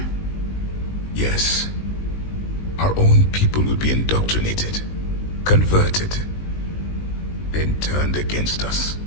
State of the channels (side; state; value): right; late; 19 ms